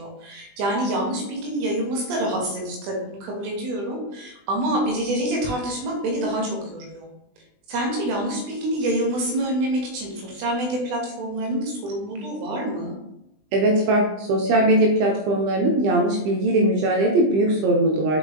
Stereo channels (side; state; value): left; late; 20 ms